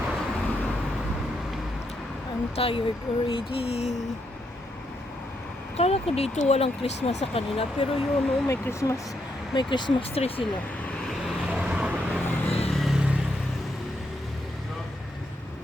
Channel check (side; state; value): both; normal; correlation 0.79